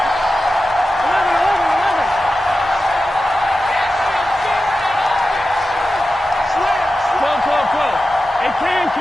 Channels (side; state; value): both; normal; correlation 0.93